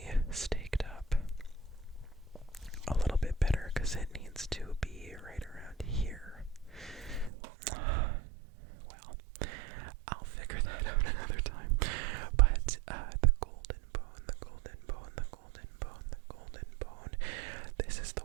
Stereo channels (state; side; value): drops out; left; at 7.3 s